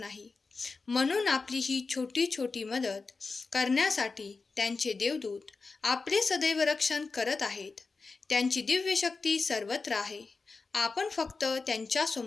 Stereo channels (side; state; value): right; quieter; 4.2 dB